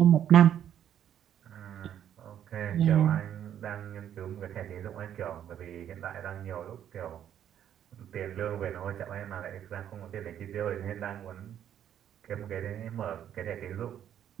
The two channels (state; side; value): quieter; left; 10.1 dB